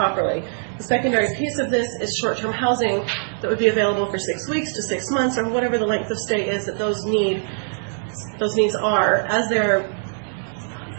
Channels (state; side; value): silent; left; digital silence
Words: The secondary piece of this is short-term housing that would be available for 6 weeks to 6 months, or whatever the length of stay is that those needs are as they're